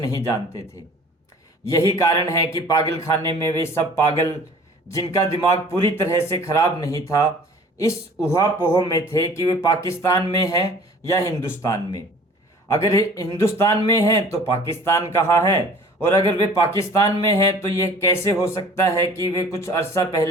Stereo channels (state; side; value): normal; both; correlation 0.48